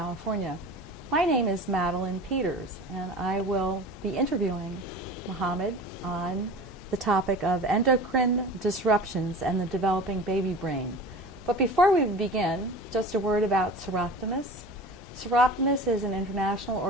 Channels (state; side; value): normal; both; correlation 0.36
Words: My name is Madeline Peters, and I will be interviewing Mohammed on the topic of endocrine disruptions and the developing baby brain. But before we begin, just a word about Disruptors. Disruptors is an international